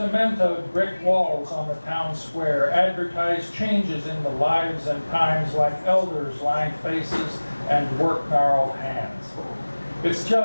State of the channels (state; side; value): inverted; both; correlation -1.00